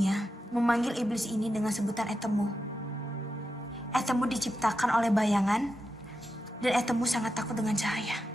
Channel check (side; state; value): both; normal; correlation 0.89